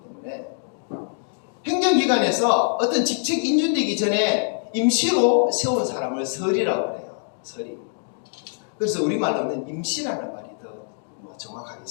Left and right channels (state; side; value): silent; right; 63 dB below the other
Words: 때문에. 행정기관에서 어떤 직책 인준되기 전에 임시로 세운 사람을 설이라고 해요. 설이. 그래서 우리말로는 임시라는 말이 더